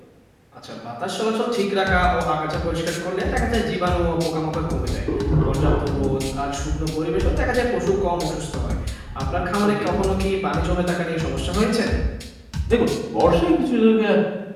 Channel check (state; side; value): identical; both; correlation 1.00